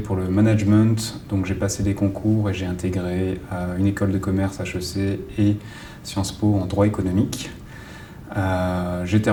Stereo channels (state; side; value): identical; both; correlation 1.00